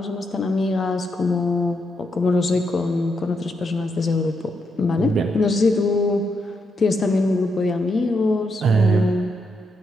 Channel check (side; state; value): both; normal; correlation 0.81